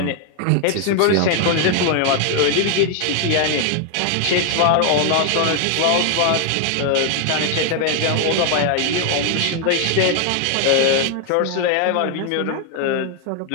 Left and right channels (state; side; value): different; both; correlation 0.00